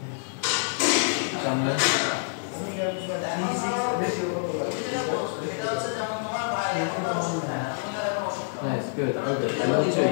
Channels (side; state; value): right; silent; digital silence